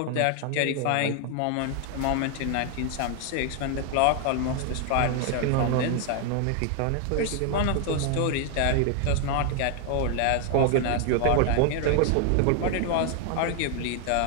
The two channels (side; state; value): both; different; correlation 0.00